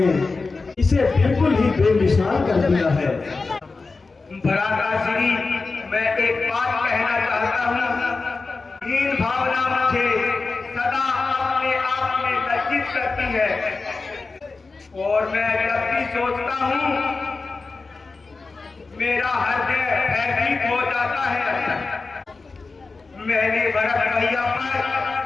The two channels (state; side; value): quieter; right; 4.0 dB